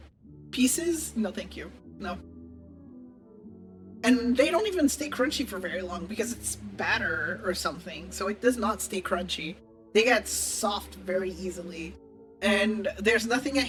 pieces. No, thank you. No. And they don't even stay crunchy for very long because it's batter or something. So it does not stay crunchy. They get soft very easily. And there's nothing I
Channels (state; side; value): identical; both; correlation 1.00